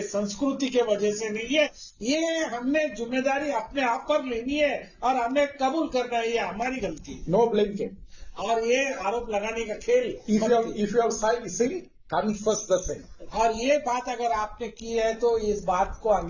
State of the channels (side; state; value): both; identical; correlation 1.00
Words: संस्कृति के वजह से नहीं है। ये हमने जिम्मेदारी अपने आप पर लेनी है और हमने कबूल करना है, ये हमारी गलती है। No blame came. और ये आरोप लगाने का खेल If you have sinned, confess the sin. और ये बात अगर आपने की है तो इस बात को